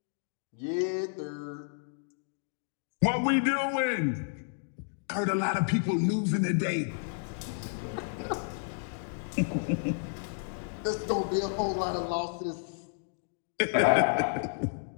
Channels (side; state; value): right; silent; digital silence